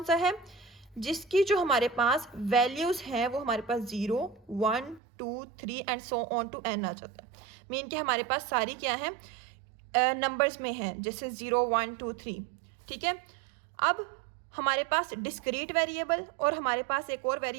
सा है, जिसकी जो हमारे पास वैल्यूज हैं वो हमारे पास 0, 1, 2, 3 and so on to n आ जाता है। मीन कि हमारे पास सारी क्या है, नंबर्स में है, जैसे 0, 1, 2, 3, ठीक है। अब हमारे पास डिस्क्रीट वेरिएबल और हमारे पास एक और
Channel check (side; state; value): left; drops out; at 5.0 s